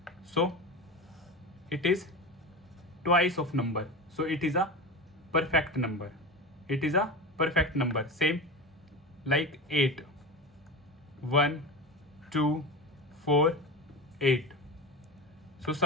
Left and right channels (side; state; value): both; normal; correlation 0.26